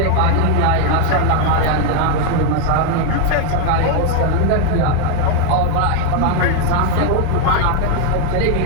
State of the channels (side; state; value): both; different; correlation 0.01